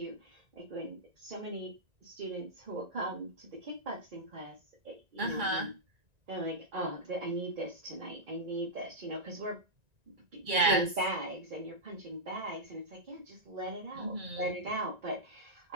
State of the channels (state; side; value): late; left; 1.9 ms